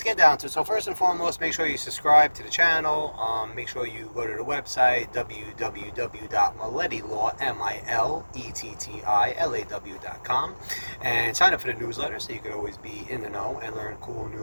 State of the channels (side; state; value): both; inverted; correlation -1.00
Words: get down to it. So first and foremost, make sure you subscribe to the channel. Make sure you go to the website, www.milletti.com, and sign up for the newsletter so you can always be in the know and learn cool,